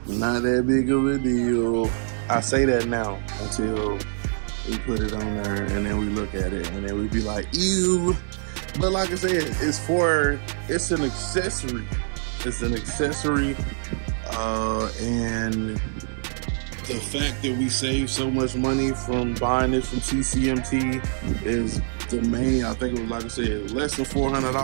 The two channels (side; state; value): left; silent; 57 dB below the other